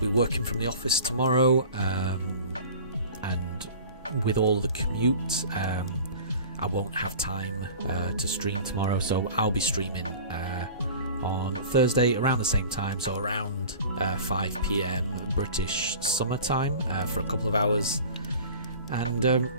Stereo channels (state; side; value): inverted; both; correlation -0.40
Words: working from the office tomorrow, and with all the commute, I won't have time to stream tomorrow. So I'll be streaming on Thursday around the same time, so around 5 p.m. British summertime for a couple of hours, and